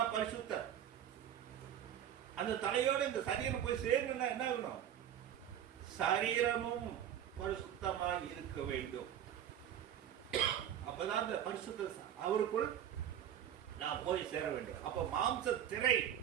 பரிசுத்தர். அந்த தலையோட இந்த சரீரம் போய் சேரணும்னா என்ன ஆகணும்? சரீரமும் பரிசுத்தமாக இருக்க வேண்டும். அப்பதான் இந்த பரிசுத்த அவருக்குள் நான் போய் சேர வேண்டும். அப்ப மாம்ச திரை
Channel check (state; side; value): quieter; left; 10.1 dB